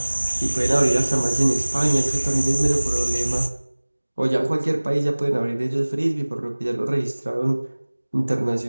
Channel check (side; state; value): both; inverted; correlation -1.00